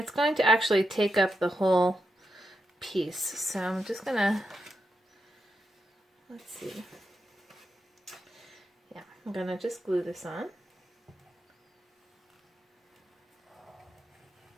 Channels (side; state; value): both; normal; correlation 0.86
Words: going to actually take up the whole piece. So I'm just going to, let's see. Yeah, I'm going to just glue this on.